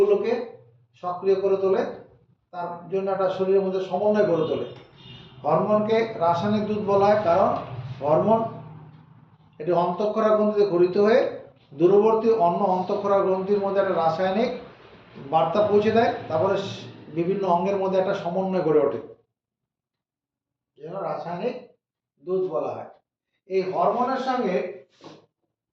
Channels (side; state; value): both; identical; correlation 1.00